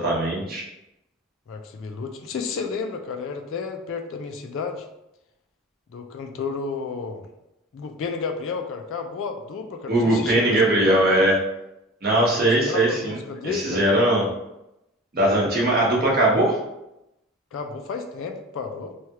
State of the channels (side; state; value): both; normal; correlation 0.37